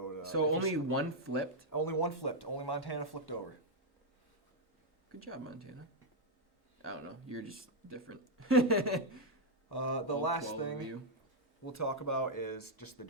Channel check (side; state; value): both; normal; correlation -0.02